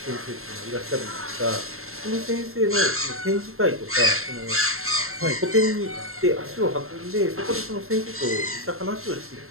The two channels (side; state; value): left; late; 0.62 ms